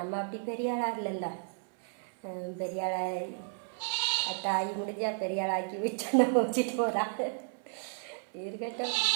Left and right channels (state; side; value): silent; left; 56 dB below the other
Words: அப்படி பெரிய ஆளாக இல்லைல்ல. பெரிய ஆளாக தாய் முடிஞ்சால் பெரிய ஆளாக்கி விட்டு நம்ம வச்சுட்டு போகிறாங்க, இருக்கட்டும்.